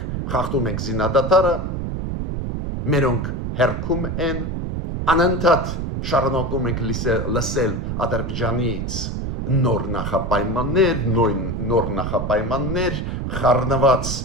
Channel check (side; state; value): right; noise; rumble, 3 dB below the sound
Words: խախտում ենք զինադատարը, մերոնք հերքում են, անընդհատ շարունակում ենք լսել Ադրբեջանից նոր նախապայմաններ, խառնված